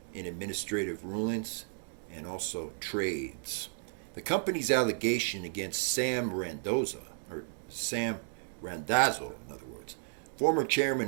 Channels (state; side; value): silent; left; digital silence